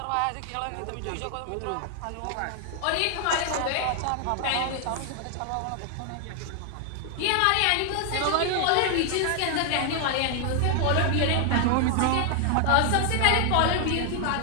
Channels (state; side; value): different; both; correlation 0.00